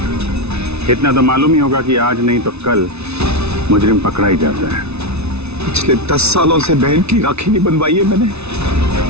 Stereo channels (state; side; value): late; left; 0.80 ms